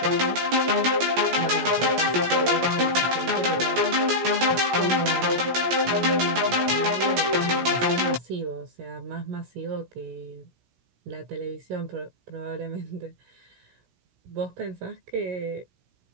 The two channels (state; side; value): late; left; 17 ms